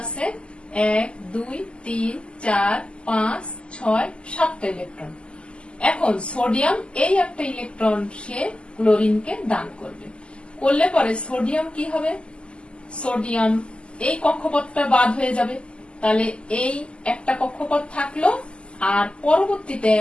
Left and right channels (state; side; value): late; right; 0.052 ms